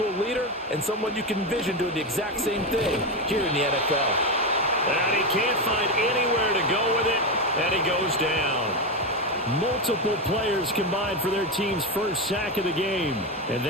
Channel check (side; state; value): both; normal; correlation 0.12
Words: a leader and someone you can envision doing the exact same thing here in the NFL. And he can't find anywhere to go with it, and he goes down. Multiple players combined for their team's first sack of the game, and